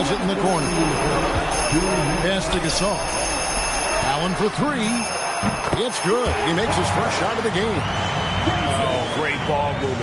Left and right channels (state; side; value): identical; both; correlation 1.00